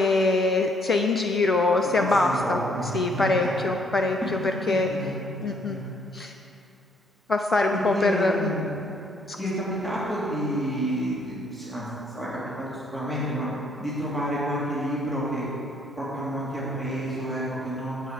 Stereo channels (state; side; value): normal; both; correlation 0.66